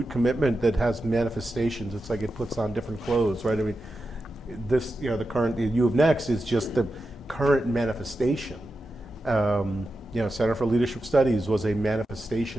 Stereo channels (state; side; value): normal; both; correlation 0.90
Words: commitment that has manifestations. It's like it puts on different clothes, right? I mean, this, the current, U of Next is just the current manifestation. Center for Leadership Studies was a